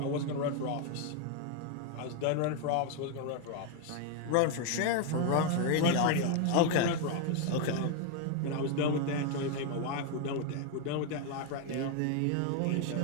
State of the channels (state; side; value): different; both; correlation 0.01